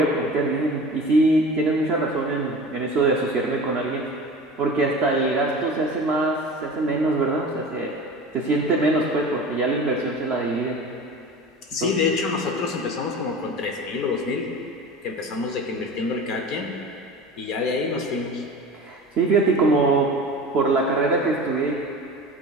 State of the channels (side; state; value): both; normal; correlation 0.36